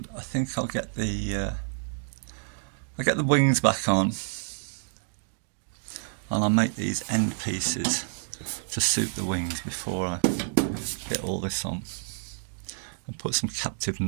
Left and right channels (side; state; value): left; silent; digital silence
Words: I think I'll get the wings back on, and I'll make these end pieces to suit the wings before I get all this on. And put some captive